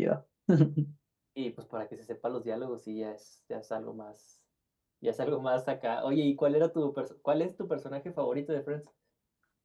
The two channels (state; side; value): identical; both; correlation 1.00